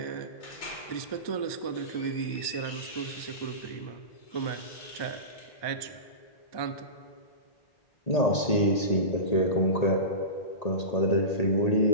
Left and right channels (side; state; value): right; late; 1.8 ms